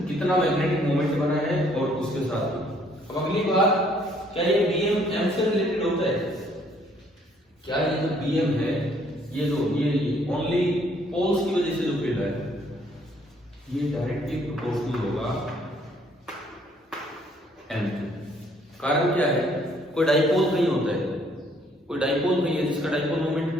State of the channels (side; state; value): both; normal; correlation 0.64